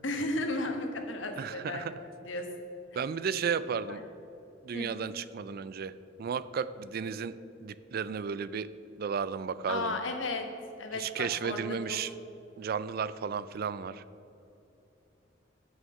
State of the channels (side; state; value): left; quieter; 3.2 dB